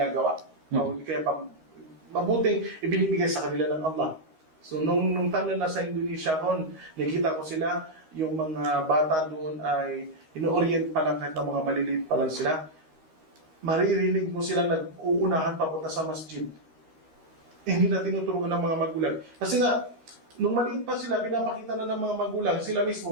O kaya mabuting ibinibigay sa kanila ng Allah. So nung time na nasa Indonesia kon, nakita ko sila, yung mga bata doon ay ino-orient pa lang kahit na mga maliliit pa lang sila. Maririnig mo sila nag-uunahan papunta sa masjid. Hindi na tinuturuan ng mga magulang. Kasi nga, nung maliit pa sila, pinapakita na ng mga magulang, sila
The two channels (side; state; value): left; late; 13 ms